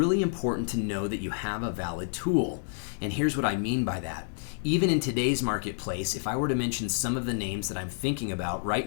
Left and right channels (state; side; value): silent; right; digital silence